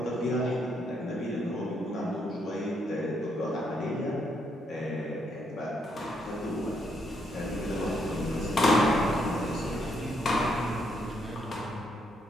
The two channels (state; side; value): normal; both; correlation 0.75